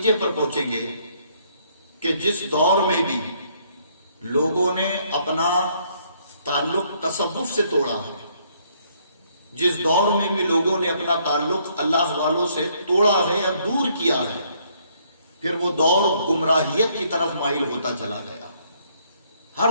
پر پہنچیں گے کہ جس دور میں بھی لوگوں نے اپنا تعلق تصوف سے توڑا ہے، جس دور میں بھی لوگوں نے اپنا تعلق اللہ والوں سے توڑا ہے یا دور کیا ہے، پھر وہ دور گمراہیت کی طرف مائل ہوتا چلا گیا۔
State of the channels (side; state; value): both; inverted; correlation -0.67